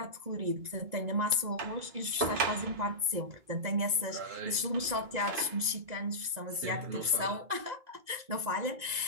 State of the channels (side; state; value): left; late; 2.0 ms